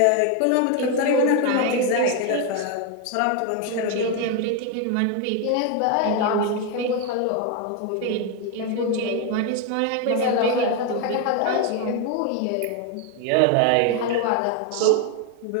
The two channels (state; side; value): different; both; correlation 0.01